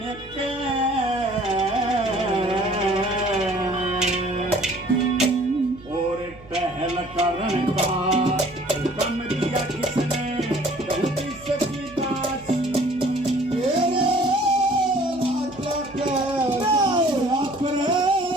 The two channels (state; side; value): noise; right; hum, 22 dB below the sound